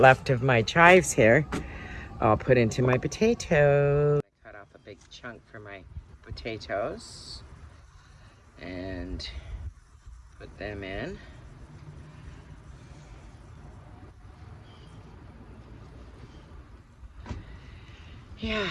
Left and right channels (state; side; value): identical; both; correlation 1.00